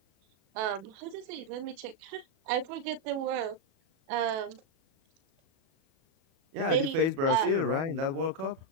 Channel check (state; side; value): late; left; 37 ms